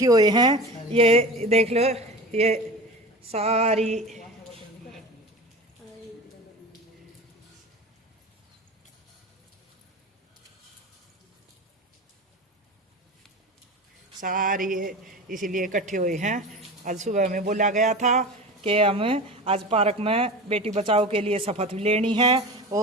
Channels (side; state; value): both; normal; correlation 0.31